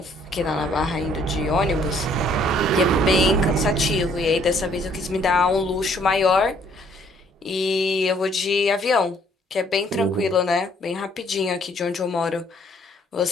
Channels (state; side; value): normal; both; correlation 0.63